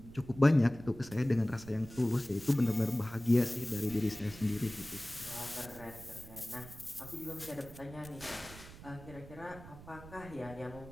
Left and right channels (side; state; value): right; noise; rumble, 16 dB below the sound